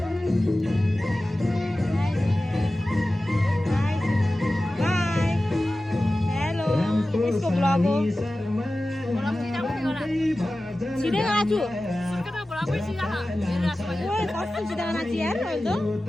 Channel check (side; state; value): both; normal; correlation 0.95